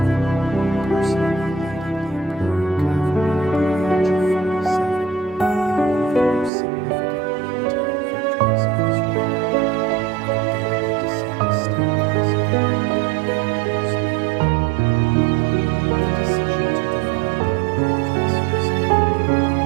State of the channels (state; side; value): drops out; left; at 6.5 s